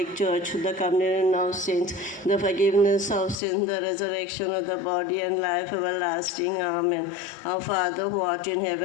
Church, the communion of saints, the forgiveness of sins, the resurrection of the body, and life everlasting. Amen. Our Father who art in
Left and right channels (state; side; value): drops out; right; at 3.4 s